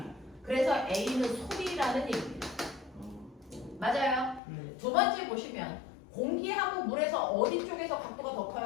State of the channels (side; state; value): right; drops out; at 4.4 s